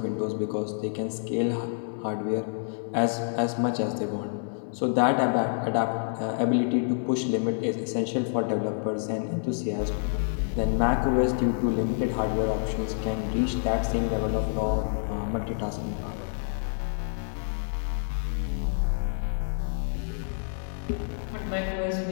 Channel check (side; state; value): right; silent; digital silence